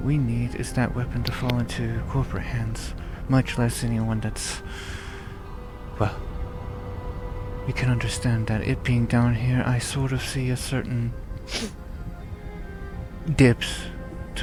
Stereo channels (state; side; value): identical; both; correlation 1.00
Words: we need is that weapon to fall into corporate hands, much less anyone that's... well, you can understand that it being down here, I sort of see a certain dips,